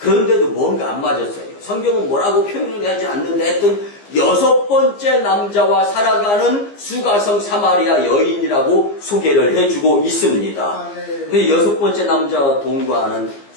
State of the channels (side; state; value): right; late; 15 ms